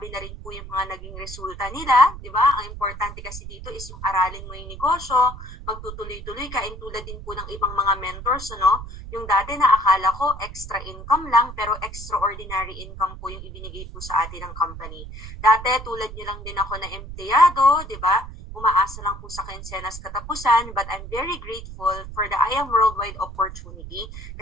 na rin po yung mga naging resulta nila, diba? Ang importante kasi dito is yung aralin mo yung negosyo, magtutuloy-tuloy ka, and tulad din po ng ibang mga mentors, yung dati na akala ko extra income lang, pero extraordinary income po yung ibinigay po sa atin ng company. Dati, tulad nyo lang din ako na empleyado, diba? Umaasa lang po sa kinsenas katapusan, but I'm very grateful for the I Am Worldwide opportunity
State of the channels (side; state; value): right; noise; rumble, 11 dB below the sound